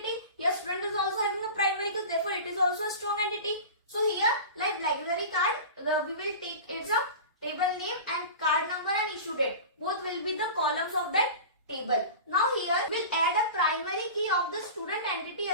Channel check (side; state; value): both; inverted; correlation -0.33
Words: Here student is also having a primary key, therefore it is also a strong entity. So here, like library card, we will take card number and issue date. Both will be the columns of that table. Now here we'll add a primary key of the student entity